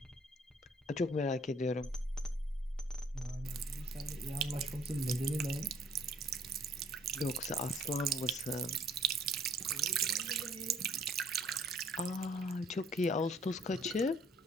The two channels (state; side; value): normal; both; correlation 0.61